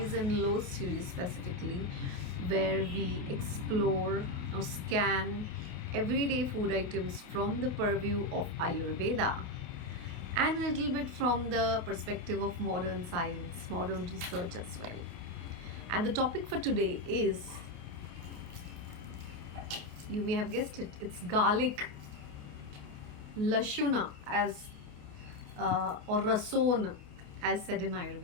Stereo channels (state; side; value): late; left; 28 ms